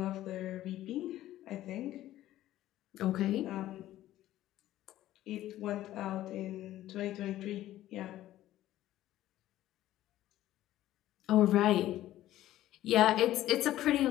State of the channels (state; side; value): quieter; right; 14.1 dB